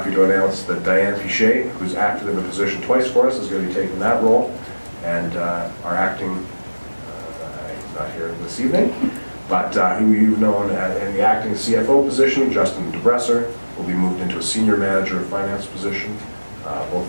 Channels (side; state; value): both; inverted; correlation -1.00